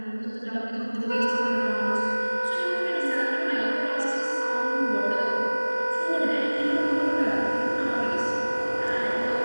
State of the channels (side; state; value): both; inverted; correlation -1.00